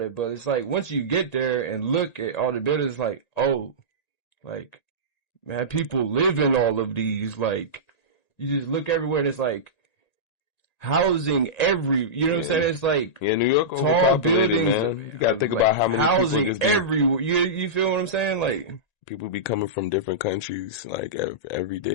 it, but it's like, once you get there and look at all the buildings, it's like, oh, like, man, people live in all of these, like, you just look everywhere and it's like, housing you know what I'm saying? It's like, New York, tall buildings. Man. You gotta think about how many housing everywhere. You feel what I'm saying? Like, people be coming from different countries, like every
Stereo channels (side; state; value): right; late; 1.9 ms